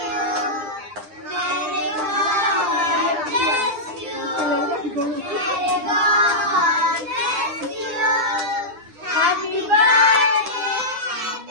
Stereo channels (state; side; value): late; left; 9.9 ms